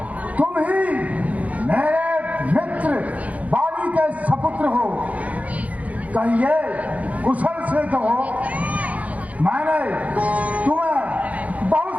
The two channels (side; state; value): left; late; 0.070 ms